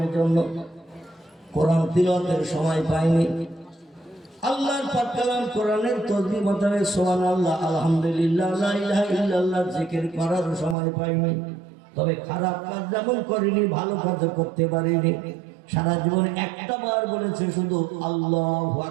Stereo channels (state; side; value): drops out; left; at 10.8 s